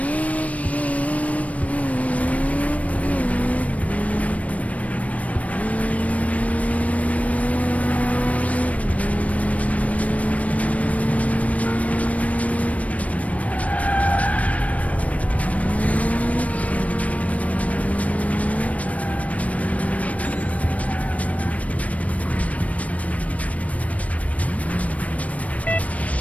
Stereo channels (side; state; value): right; late; 0.067 ms